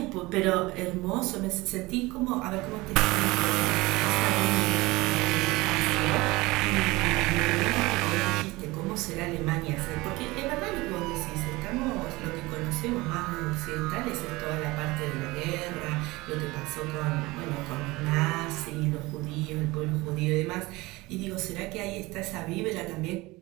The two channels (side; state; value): left; quieter; 21.6 dB